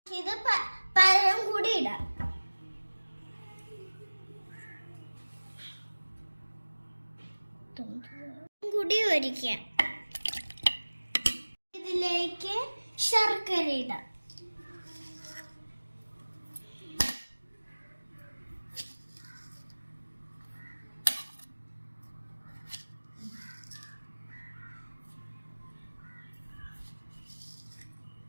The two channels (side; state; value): both; inverted; correlation -1.00